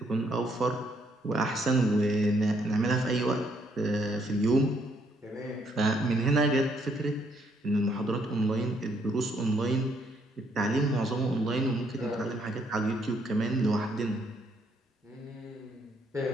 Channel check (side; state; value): both; normal; correlation 0.71